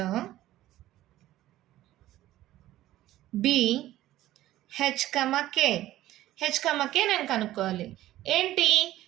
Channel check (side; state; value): left; quieter; 14.8 dB